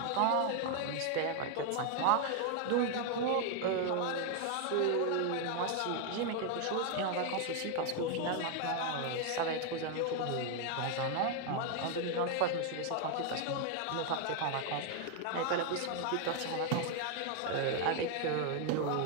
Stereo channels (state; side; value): different; both; correlation 0.01